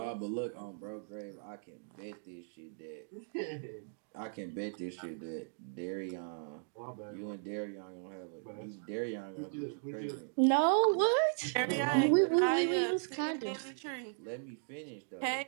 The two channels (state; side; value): silent; left; digital silence